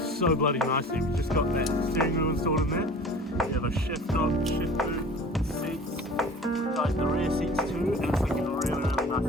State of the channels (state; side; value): normal; both; correlation 0.43